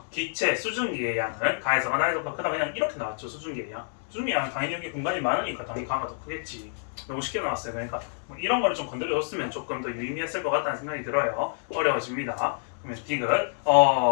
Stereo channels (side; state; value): right; silent; digital silence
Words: 기체 수증기의 양은 가에서가 나에서보다 크다. 그냥 이렇게 나왔죠. 수증기의 양. 수증기의 양은 당연히 여기 공간이 많으니까 당연히 가가 더 크겠지. 너무 쉽게 나왔어요. 그러니까 뭐 이런 거를 좀 건드려줬으면 조금 더 유의미했을 것 같다는 생각이 들어요. 어려워집니다. 그러면 디귿